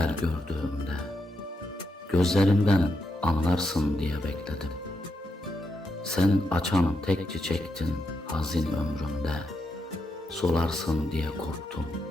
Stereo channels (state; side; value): normal; both; correlation 0.82